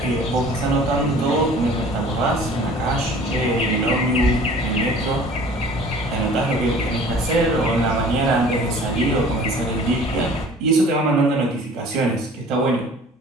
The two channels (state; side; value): normal; both; correlation 0.48